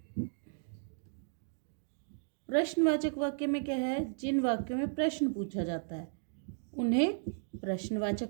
प्रश्नवाचक वाक्य में क्या है, जिन वाक्यों में प्रश्न पूछा जाता है उन्हें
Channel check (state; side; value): silent; left; digital silence